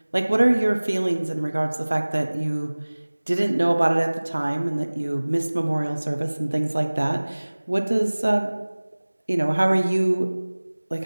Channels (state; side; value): inverted; both; correlation -1.00